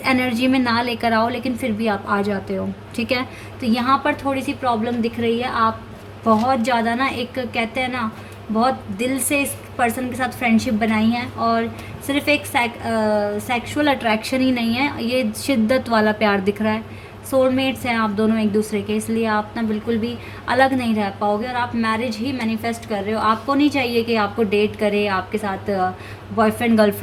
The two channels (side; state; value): both; identical; correlation 1.00